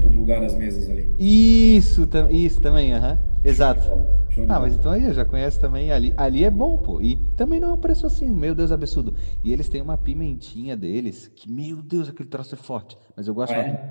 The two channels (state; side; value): inverted; both; correlation -1.00